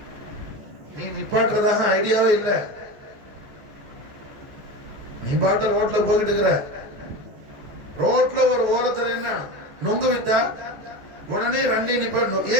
நீ நிப்பாட்டுறதாக ஐடியாவே இல்லை, நீ பாட்டு ரோட்ல போயிட்டு இருக்கிற, ரோட்ல ஒரு ஓரத்துல என்ன நொங்கு வித்தா உடனே வண்டியை நிப்பாட்டணும்.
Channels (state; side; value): late; left; 15 ms